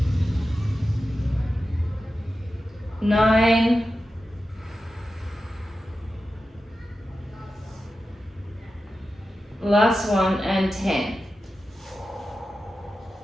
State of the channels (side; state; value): both; normal; correlation 0.92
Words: 9. 1 and 10.